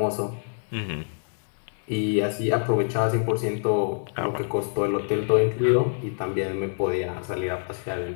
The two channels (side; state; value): right; silent; digital silence